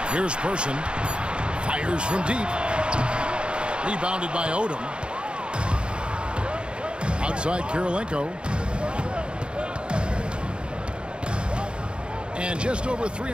Here's Person. Fires from deep. Rebounded by Odom. Outside Kirilenko. And just over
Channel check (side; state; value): left; late; 0.054 ms